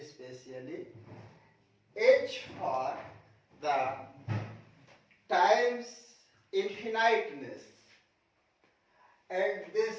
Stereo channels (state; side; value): identical; both; correlation 1.00